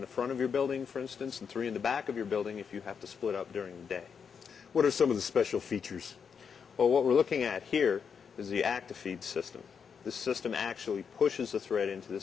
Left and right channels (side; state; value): right; quieter; 6.6 dB